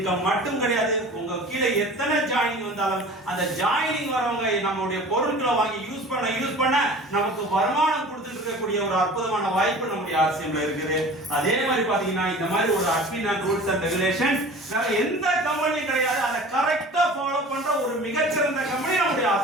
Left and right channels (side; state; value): both; normal; correlation 0.41